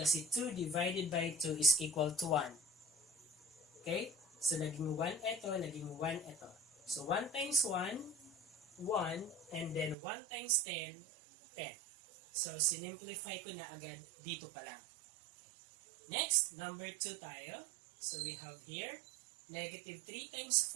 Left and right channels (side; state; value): left; drops out; at 10.0 s